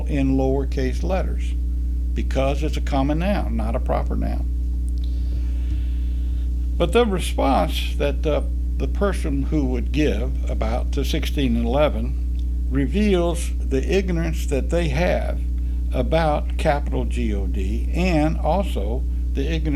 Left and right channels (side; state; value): both; identical; correlation 1.00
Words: in lowercase letters, because it's a common noun, not a proper noun. But the response that the person who would give about the 1611 reveals the ignorance that they have about capital G-O-D, and also the